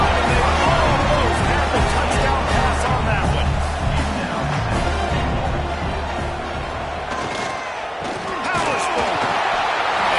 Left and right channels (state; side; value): identical; both; correlation 1.00